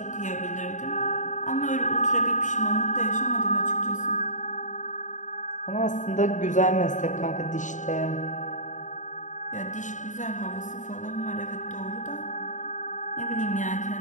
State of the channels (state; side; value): late; right; 0.36 ms